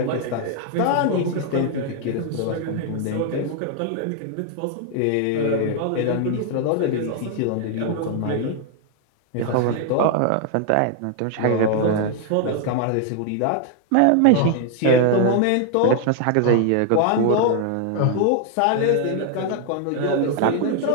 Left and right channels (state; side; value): different; both; correlation 0.00